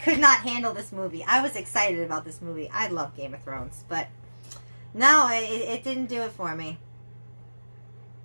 could not handle this movie. I was excited about this movie. I love Game of Thrones. But no, it didn't do it for me.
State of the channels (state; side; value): inverted; both; correlation -1.00